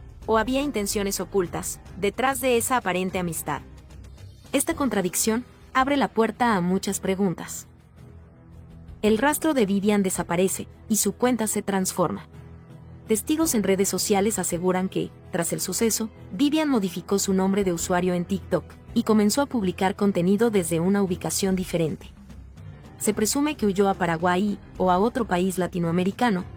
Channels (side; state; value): both; identical; correlation 1.00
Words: ¿O había intenciones ocultas detrás de esa aparente amistad? Esta contradicción abre la puerta a muchas preguntas. El rastro de Vivian desaparece y su cuenta se transforma. Testigos en redes sociales aseguran que, tras el suceso, Vivian modificó su nombre de usuario en TikTok y comenzó a publicar contenido desde una ubicación diferente. Se presume que huyó a Paraguay o a otro país latinoamericano,